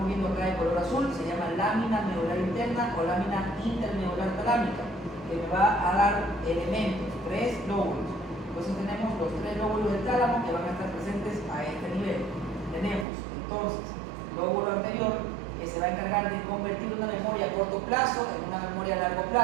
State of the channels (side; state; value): left; drops out; at 13.1 s